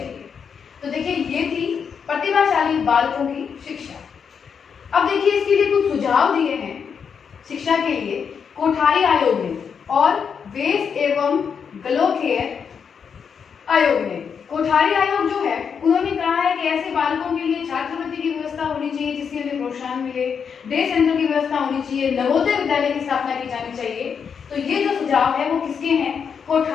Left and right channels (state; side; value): quieter; right; 6.7 dB